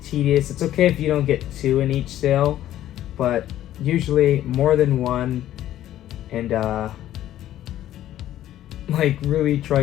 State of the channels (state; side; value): quieter; right; 12.8 dB